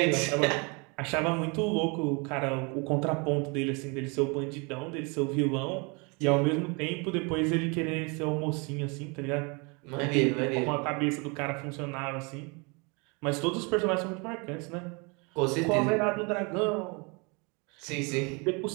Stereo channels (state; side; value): quieter; left; 30.9 dB